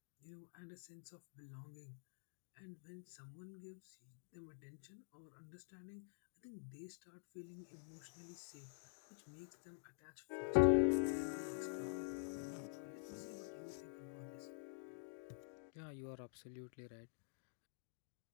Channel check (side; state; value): right; silent; digital silence